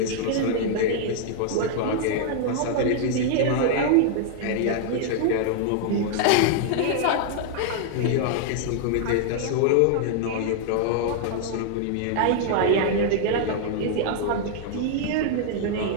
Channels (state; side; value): different; both; correlation -0.01